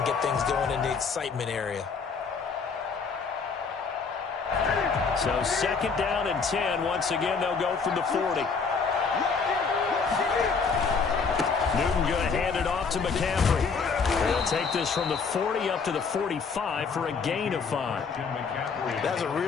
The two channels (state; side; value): quieter; right; 5.2 dB